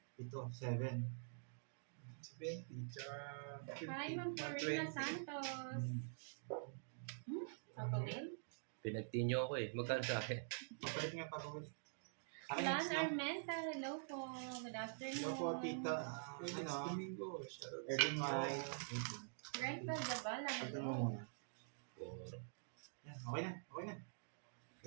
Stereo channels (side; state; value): left; silent; digital silence